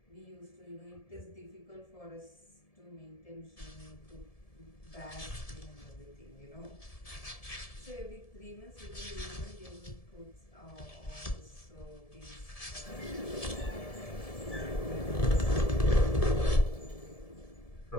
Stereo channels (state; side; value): late; right; 1.7 ms